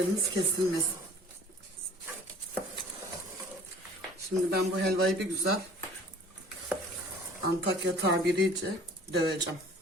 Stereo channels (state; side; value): normal; both; correlation 0.49